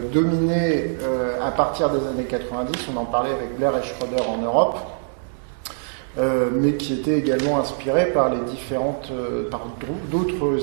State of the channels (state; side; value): silent; left; digital silence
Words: dominé à partir des années 90, on en parlait avec Blair et Schroeder en Europe, mais qui étaient également inspirés par par